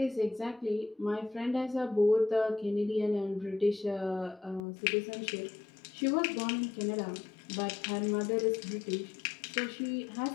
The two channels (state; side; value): drops out; right; at 4.6 s